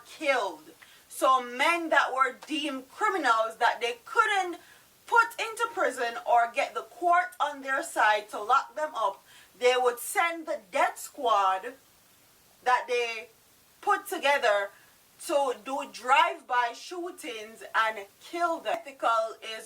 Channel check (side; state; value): both; identical; correlation 1.00